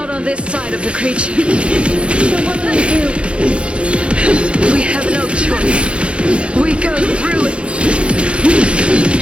on this side of the creature. So what do we do? We have no choice. We go through it.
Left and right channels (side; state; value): left; late; 0.059 ms